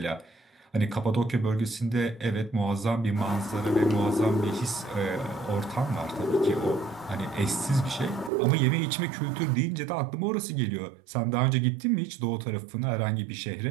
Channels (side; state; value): left; drops out; at 8.3 s